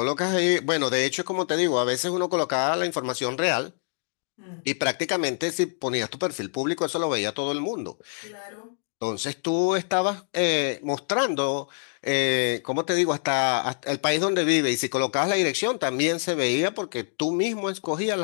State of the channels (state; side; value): silent; right; digital silence